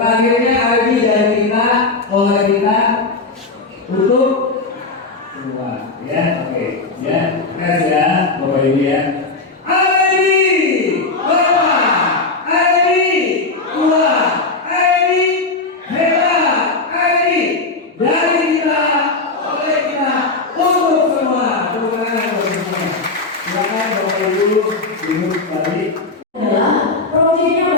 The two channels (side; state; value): right; quieter; 3.6 dB